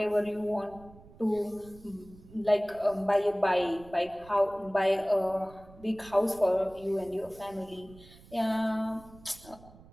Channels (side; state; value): right; noise; rumble, 22 dB below the sound